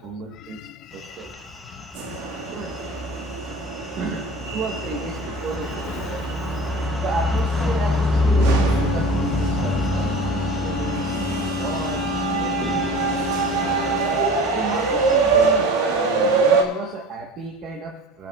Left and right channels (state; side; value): normal; both; correlation 0.39